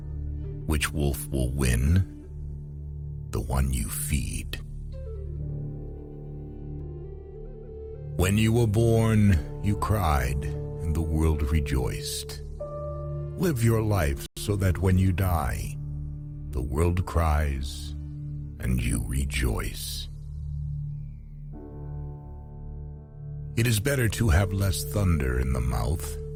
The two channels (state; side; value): identical; both; correlation 1.00